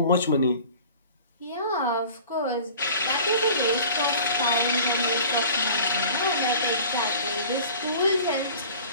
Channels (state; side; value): inverted; both; correlation -0.44